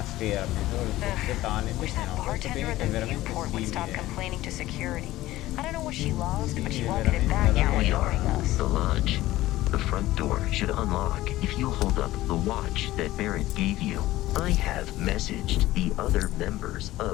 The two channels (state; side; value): quieter; right; 16.3 dB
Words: sfera, solo il forse tale, invece no, questo è veramente simile. The lodge. The front door should unlock if you hold up the watch that Barrett gave you. I have messaged the other members